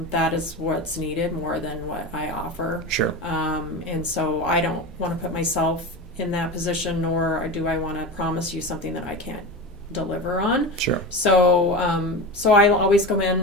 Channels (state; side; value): normal; both; correlation 0.25